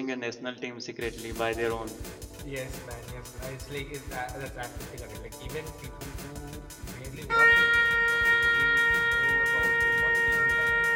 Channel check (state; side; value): identical; both; correlation 1.00